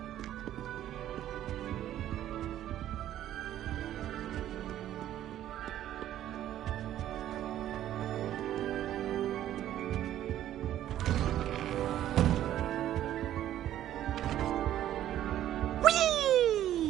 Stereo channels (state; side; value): quieter; left; 12.2 dB